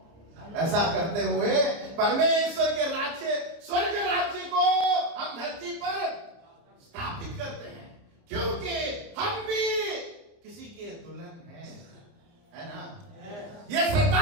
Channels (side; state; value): left; late; 29 ms